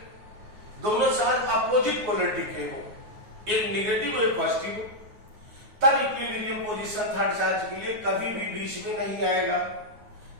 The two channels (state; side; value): late; left; 9.4 ms